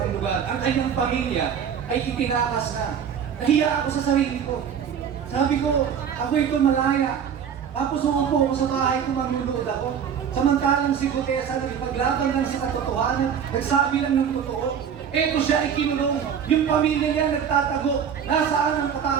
lugar. Ang kanyang pamilya ay itinakas na. Nahiya ako sa sarili ko. Sabi ko, ako ito malaya. Tapos umupo ako sa bahay ko, magluluod ako. Samantalang si Guteza nagpaglaban lang sa katotohanan, nagsabi lang ng totoo. Eto siya ay kinulong. Yung pamilya niya nagtatago. Nasaan ang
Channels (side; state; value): left; quieter; 7.9 dB